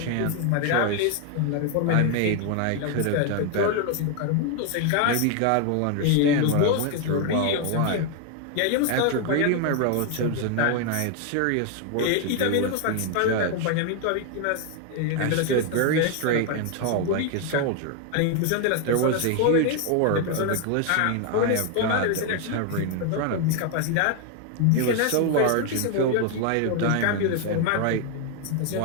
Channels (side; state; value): both; different; correlation 0.01